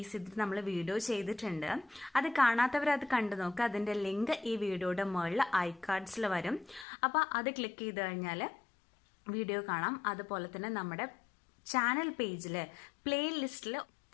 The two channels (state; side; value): drops out; right; at 6.9 s